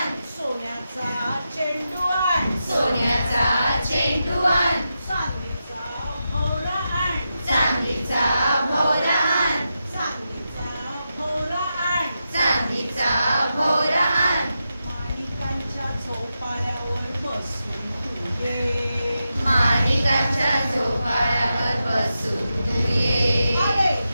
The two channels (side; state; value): both; inverted; correlation -0.88